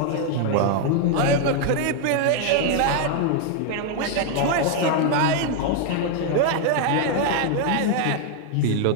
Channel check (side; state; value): both; different; correlation 0.00